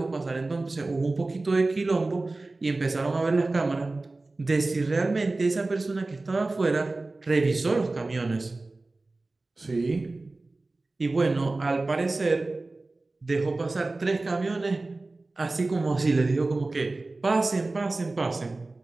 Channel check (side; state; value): left; quieter; 3.2 dB